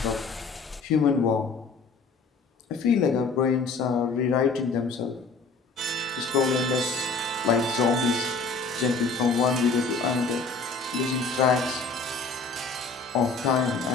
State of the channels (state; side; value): quieter; right; 4.2 dB